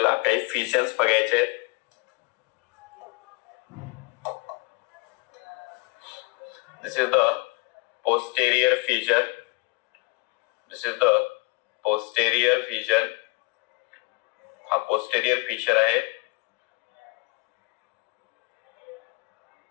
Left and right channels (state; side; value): quieter; right; 26.3 dB